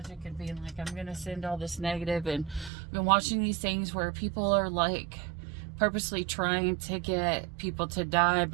and being like, I'm gonna send all this negative, and I've been watching these things where people are like purposely trying to get people to die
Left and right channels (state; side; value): drops out; left; at 2.7 s